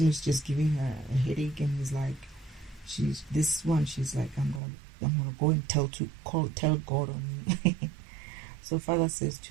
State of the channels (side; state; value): left; drops out; at 4.6 s